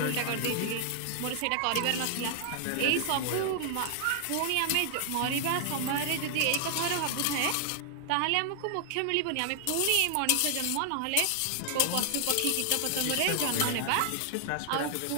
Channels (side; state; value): both; different; correlation 0.00